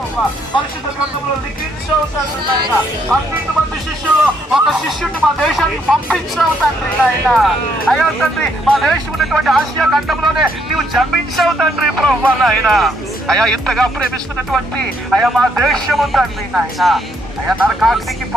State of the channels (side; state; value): both; normal; correlation 0.72